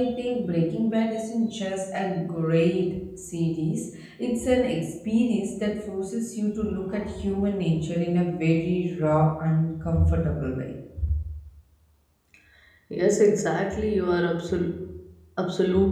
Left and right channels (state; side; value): identical; both; correlation 1.00